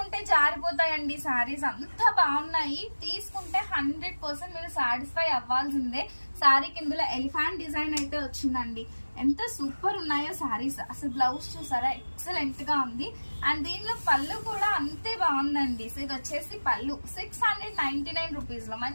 జారిపోతాయండి సారీస్, అంత బాగున్నాయి. తీసుకుంటే 100% మీరు సాటిస్ఫై అవ్వాల్సిందే. సారీ కిందలో ఎలిఫెంట్ డిజైన్ అయితే వచ్చిందండి. ఎంత సూపర్ ఉన్నాయో సారీస్. అసలు బ్లౌజ్ చూసారా, ఎక్సలెంట్ గా ఉంది. అండ్ దీనిలో పళ్ళు కూడా అంతే బాగుందండి. సో ఇది వచ్చేసి పళ్ళు 699 రూపీస్ లో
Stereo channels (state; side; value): inverted; both; correlation -1.00